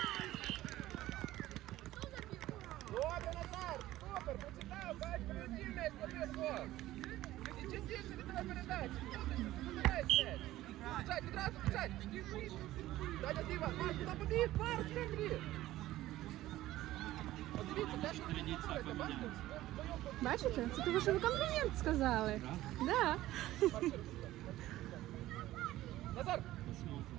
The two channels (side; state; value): left; quieter; 15.5 dB